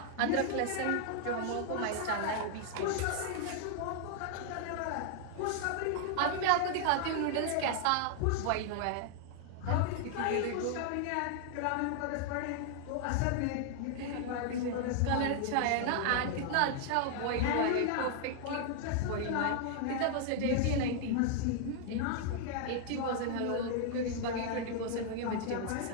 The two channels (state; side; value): different; both; correlation 0.00